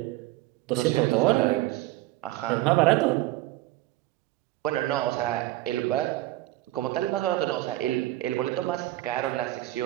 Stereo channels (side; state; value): left; quieter; 17.0 dB